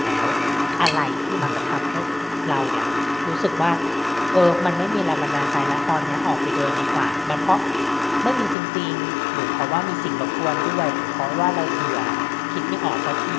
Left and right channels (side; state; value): right; drops out; at 8.6 s